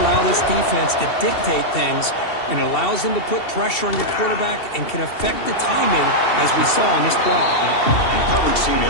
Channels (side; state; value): right; late; 2.7 ms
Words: allow this defense to dictate things, and it allows them to put pressure on your quarterback and can affect the timing, as we saw in this play. And the coverage team